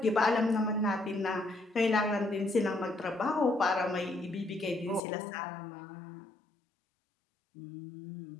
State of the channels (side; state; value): right; drops out; at 5.0 s